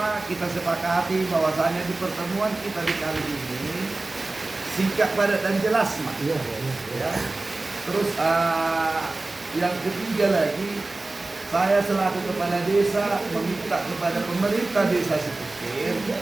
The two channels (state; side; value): quieter; left; 3.1 dB